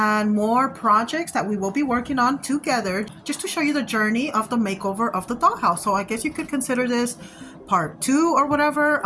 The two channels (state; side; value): identical; both; correlation 1.00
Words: more projects that we will be working on together just to show you the journey of the makeover of the dollhouse. So I guess you could consider this part 2 or whatever,